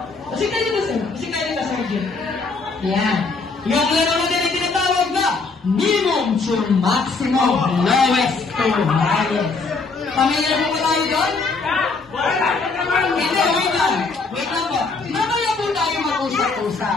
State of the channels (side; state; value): right; quieter; 4.1 dB